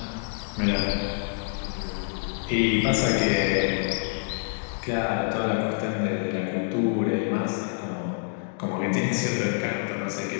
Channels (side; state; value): right; silent; digital silence